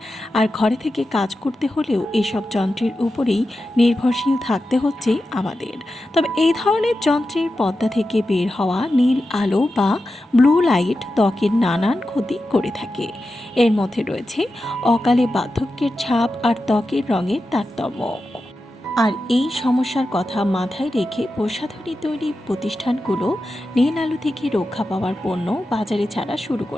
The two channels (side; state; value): both; normal; correlation 0.91